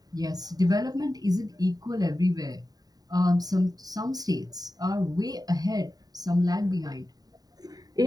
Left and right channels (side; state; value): left; late; 0.18 ms